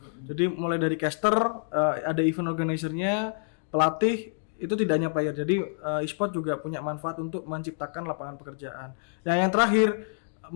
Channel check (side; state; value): right; silent; digital silence